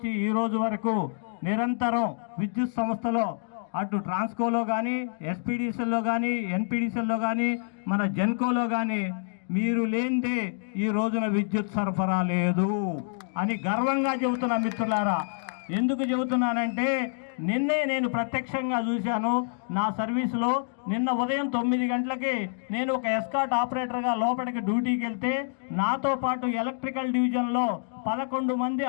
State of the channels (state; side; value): silent; right; digital silence